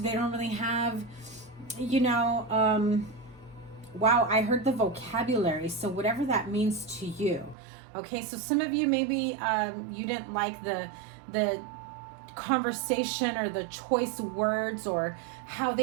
don't really have, you know, wow, I heard the vocabulary. So whatever that means to you. Okay, so some of you maybe you didn't like the conversation or the choice words, or how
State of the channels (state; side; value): drops out; left; at 7.6 s